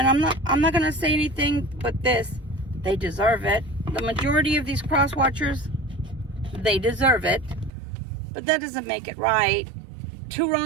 I'm not gonna say anything but this: they deserve it. The majority of these cross-watchers, they deserve it, but that doesn't make it right. Two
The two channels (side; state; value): left; drops out; at 7.7 s